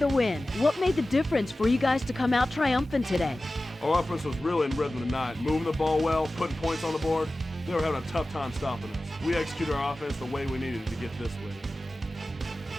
win. What made the difference for you guys to come out triumphant today? Our offense was really in rhythm tonight, moving the ball well, putting points on the board. They were having a tough time stopping us. We executed our offense the way we needed to get this win.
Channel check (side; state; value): both; normal; correlation 0.96